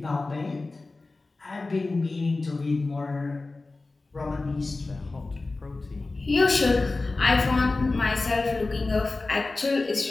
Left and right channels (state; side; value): quieter; right; 3.4 dB